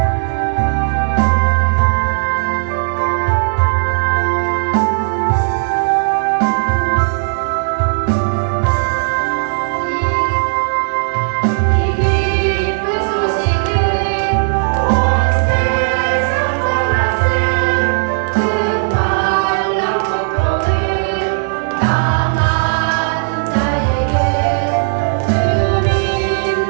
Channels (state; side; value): silent; left; digital silence